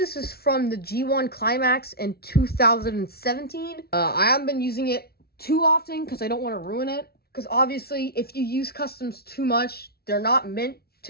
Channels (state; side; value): late; right; 0.45 ms